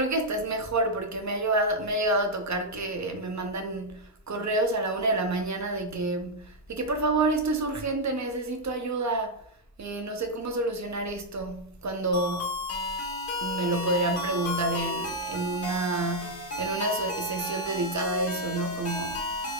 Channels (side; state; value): both; normal; correlation -0.01